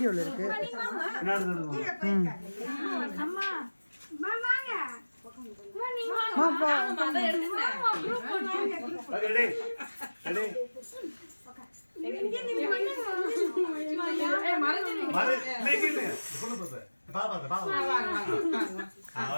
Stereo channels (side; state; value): both; inverted; correlation -1.00